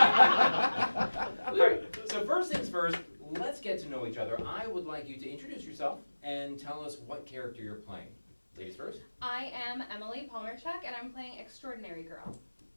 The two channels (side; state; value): both; inverted; correlation -1.00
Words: All right, so first things first, let's get to know each other. I would like you to introduce yourself and tell us what character you're playing. Ladies first. I am Emily Palmerchuk, and I'm playing Extraordinary Girl.